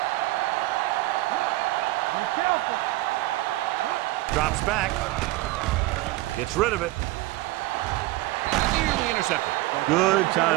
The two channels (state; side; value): quieter; left; 18.8 dB